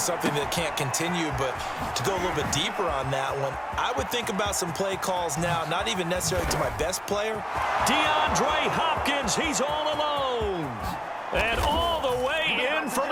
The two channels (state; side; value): identical; both; correlation 1.00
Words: that can't continue, but to go a little bit deeper on that one, I would think about some play calls now, not even necessarily to my best player. DeAndre Hopkins, he's all alone. And all the way in for